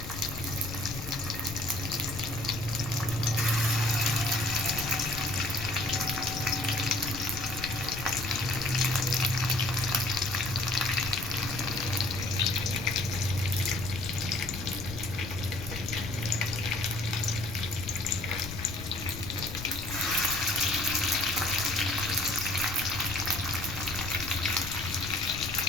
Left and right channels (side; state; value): left; noise; rumble, 9 dB below the sound